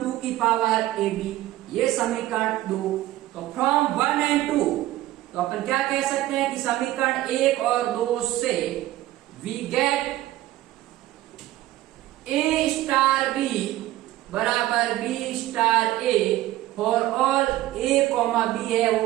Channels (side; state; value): left; quieter; 15.5 dB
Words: 2 की पावर ए बी, ये समीकरण 2। तो फ्रॉम 1 एंड 2 तो अपन क्या कह सकते हैं कि समीकरण 1 और 2 से we get A star B बराबर B star A for all A comma B है